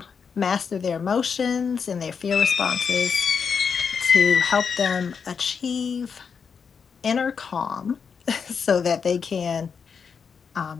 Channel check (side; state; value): right; quieter; 6.2 dB